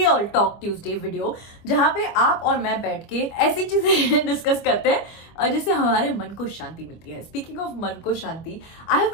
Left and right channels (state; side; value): late; right; 25 ms